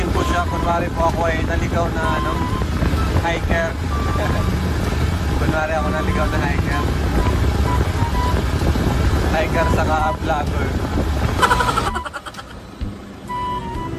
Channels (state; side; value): identical; both; correlation 1.00